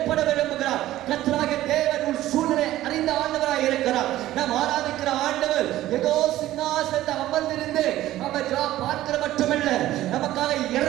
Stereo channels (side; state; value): left; quieter; 14.7 dB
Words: விரும்புகிறார். கர்த்தராகிய தேவன் உன் சூழ்நிலை அறிந்த ஆண்டவராய் இருக்கிறார். நாம் ஆராதிக்கிற ஆண்டவர் ஏதோ சிங்காசனத்தை அமர்ந்திருந்து நம்ம பார்க்கிற மட்டுமல்ல, நமக்காக